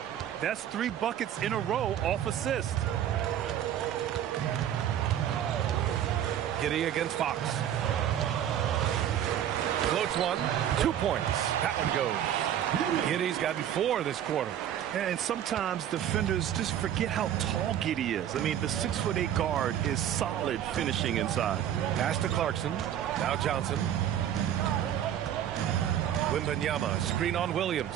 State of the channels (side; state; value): left; quieter; 10.5 dB